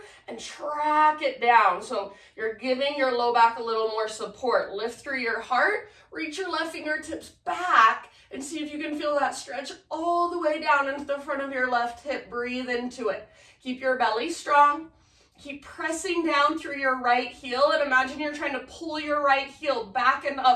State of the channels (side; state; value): both; identical; correlation 1.00